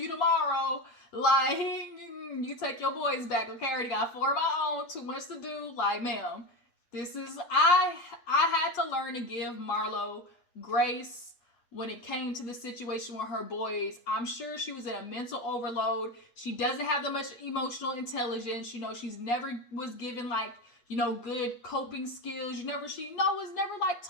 you tomorrow. Like, you take your boys back, okay? I already got 4 of my own, too much to do. Like, ma'am, this is, I had to learn to give Marlo grace when it came to the situation with her boys. I'm sure she was in a mental overload. She doesn't have that much emotional intelligence. You know, she's never was given like, you know, good coping skills. She was never like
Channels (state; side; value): late; right; 8.4 ms